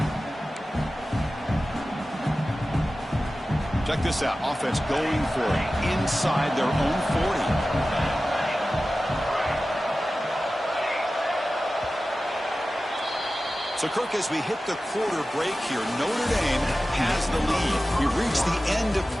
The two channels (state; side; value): normal; both; correlation 0.95